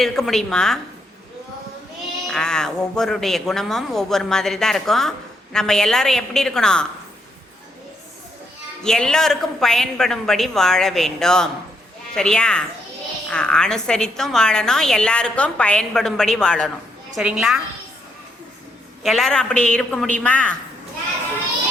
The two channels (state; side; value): normal; both; correlation 0.76